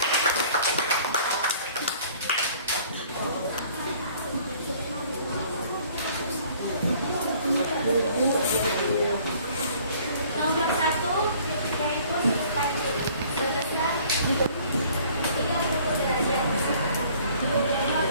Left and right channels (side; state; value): both; inverted; correlation -0.55